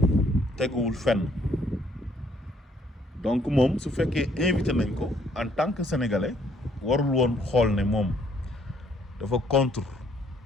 teguwul fenn. donc moom su fekkee invité nañ ko en tant que sénégalais warul woon xool ne moom dafa contre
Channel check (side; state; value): both; normal; correlation 0.66